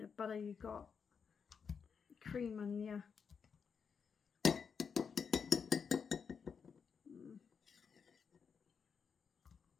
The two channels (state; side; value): quieter; right; 6.3 dB